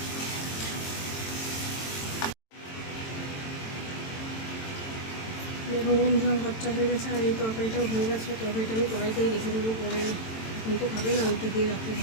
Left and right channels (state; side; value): late; right; 22 ms